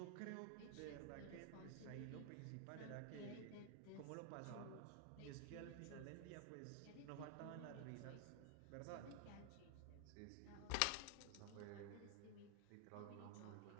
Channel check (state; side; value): different; both; correlation 0.00